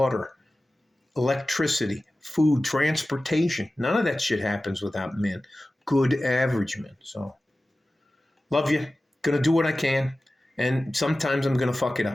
electricity, food, transportation. None of that shit happens without men. Good average men. So, love you. Gonna do what I can. And sometimes I'm gonna fuck it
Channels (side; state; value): both; normal; correlation 0.96